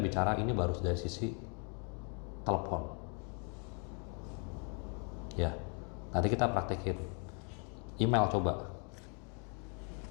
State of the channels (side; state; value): right; quieter; 37.8 dB